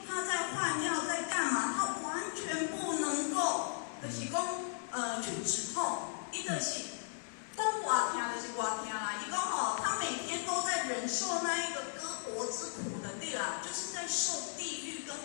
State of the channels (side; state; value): right; silent; digital silence